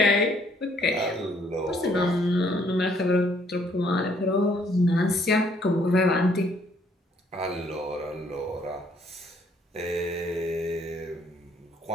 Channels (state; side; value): normal; both; correlation 0.66